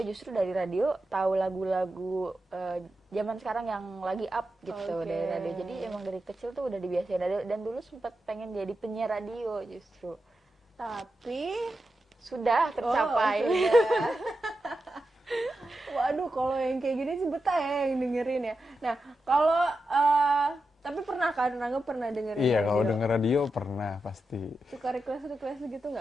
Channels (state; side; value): normal; both; correlation 0.89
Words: justru dari radio tahu lagu-lagu zaman sekarang yang lagi up gitu dari radio. Jadi emang dari kecil tuh udah dibiasain radio dan dulu sempat pengen jadi penyiar radio justru. Tapi Sudah tercapai. sudah. Waduh, kalau yang kayak gini sih betah ya yang dengerin ya. Nah, kalau tapi pernah kan, Rangga pernah dengerin Iya, radio? kalau denger radio pernah pasti. Suka request gitu